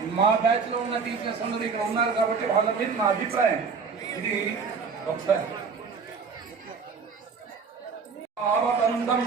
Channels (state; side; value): quieter; left; 5.4 dB